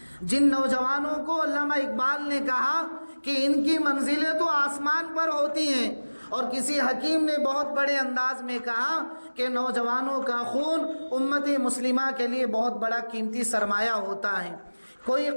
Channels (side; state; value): both; inverted; correlation -1.00